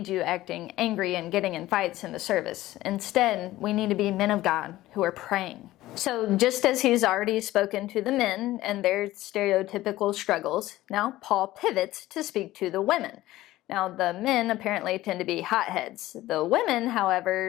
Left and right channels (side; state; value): right; quieter; 16.2 dB